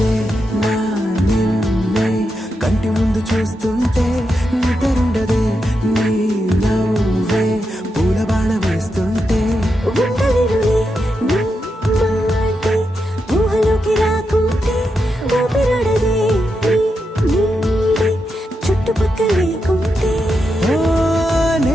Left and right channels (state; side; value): normal; both; correlation 0.86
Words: నా నిన్నే కంటి ముందు చూస్తుంటే నిద్రుండదే నీ నవ్వే పూల బాణ వేస్తుంటే ఉండలేనులే నీ మాటే ఊహలోకి రాకుంటే ఊపిరాడదే నీ నీడే చుట్టుపక్కల లేకుంటే ఓ